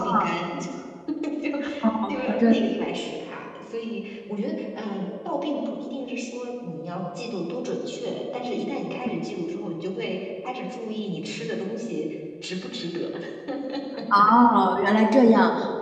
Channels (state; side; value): identical; both; correlation 1.00